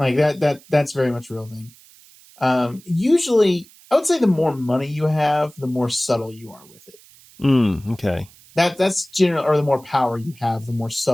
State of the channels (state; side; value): noise; right; hiss, 25 dB below the sound